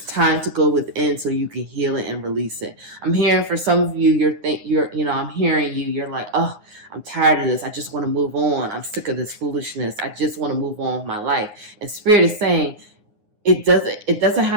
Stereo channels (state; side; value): late; left; 9.7 ms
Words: time to go within so you can heal it and release it. I'm hearing for some of you, I'm hearing you, you're like, oh, I'm tired of this. I just want to move on. I'm sick of this foolishness. I just want to move on with my life. And Spirit is saying it doesn't